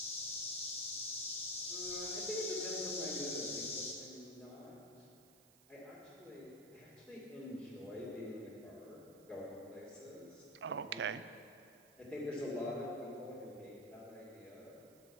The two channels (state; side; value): noise; right; hiss, 24 dB below the sound